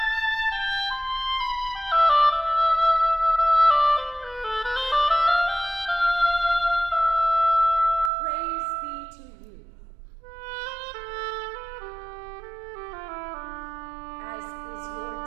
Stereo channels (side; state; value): left; drops out; at 8.1 s